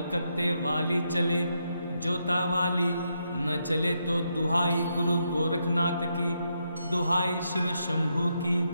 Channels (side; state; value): both; inverted; correlation -0.81